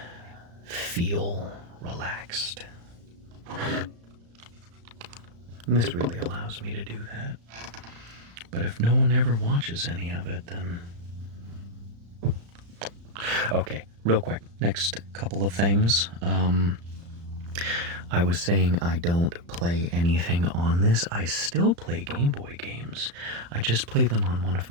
feel relaxed. And this really allows me to do that. But if no one ever watches any of it, then... Okay, real quick. Next couple of things. I was saying I don't play anything on this. I still play Game Boy games. I just play them on one of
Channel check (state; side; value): late; left; 35 ms